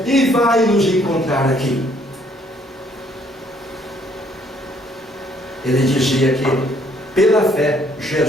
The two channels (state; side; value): normal; both; correlation 0.64